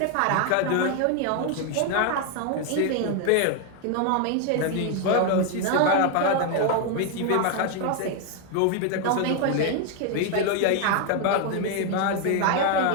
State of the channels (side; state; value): both; different; correlation 0.01